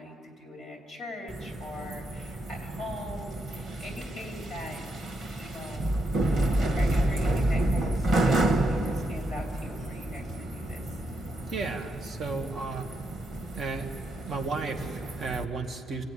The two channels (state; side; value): normal; both; correlation 0.80